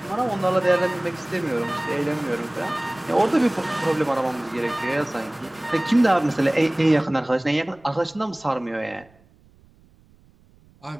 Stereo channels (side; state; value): right; noise; rumble, 29 dB below the sound